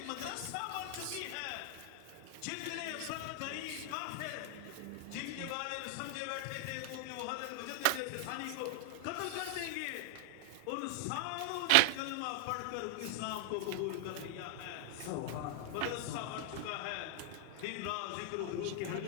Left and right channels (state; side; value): different; both; correlation 0.00